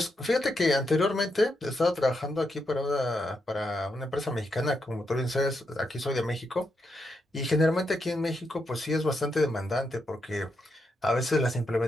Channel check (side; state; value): both; normal; correlation 0.82